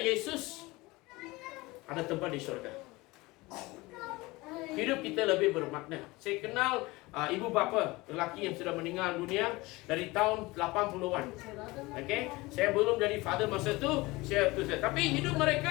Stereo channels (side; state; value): right; quieter; 21.8 dB